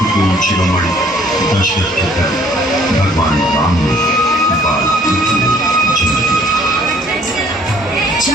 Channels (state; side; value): normal; both; correlation 0.59